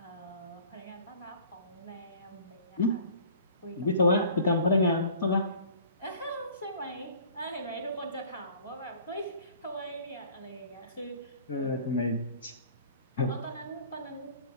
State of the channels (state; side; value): inverted; both; correlation -0.48